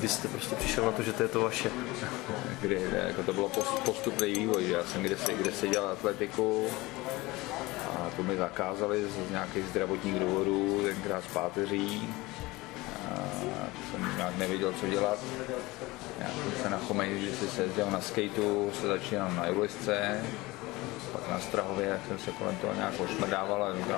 jste prostě přišel na to, že to je to vaše? Jako to bylo postupný vývoj, že já jsem kdysi dělal atletiku a to mi zakázali z nějakých zdravotních důvodů, tenkrát z páteří. A jsem nějak nevěděl, co dělat. Já jsem se na Chomeji, když se jezdil na skateu, se začínal na julisce, pak na Strahově, jak jsem se kolem toho nějak ošmrdával a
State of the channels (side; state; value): right; quieter; 21.3 dB